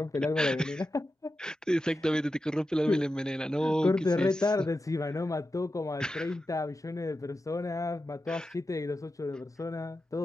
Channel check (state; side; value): normal; both; correlation 0.91